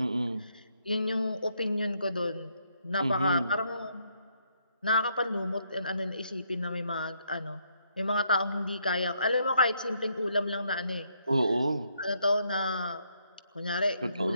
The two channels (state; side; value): inverted; both; correlation -0.73